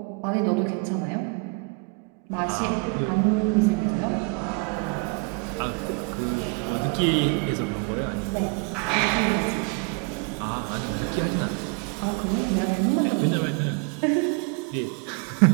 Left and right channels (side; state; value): left; quieter; 31.9 dB